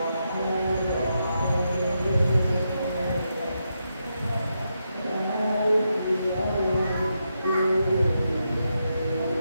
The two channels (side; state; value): both; inverted; correlation -0.84